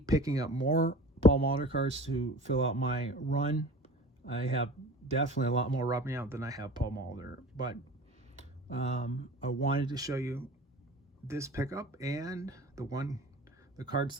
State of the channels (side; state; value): both; normal; correlation 0.40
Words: picking up more Paul Molitor cards to fill out my run. I have definitely a lot more rubbing out than I have Paul Molitor, but I wanted to show you this pickup and the cards